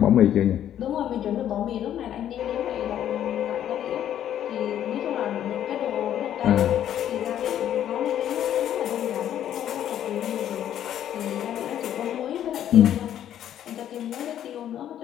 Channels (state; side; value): quieter; right; 10.8 dB